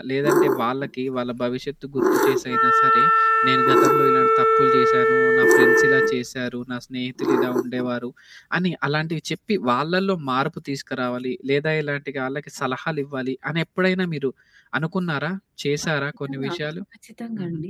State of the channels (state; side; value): identical; both; correlation 1.00